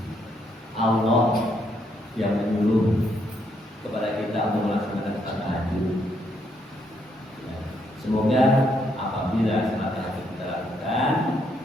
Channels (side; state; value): both; normal; correlation 0.74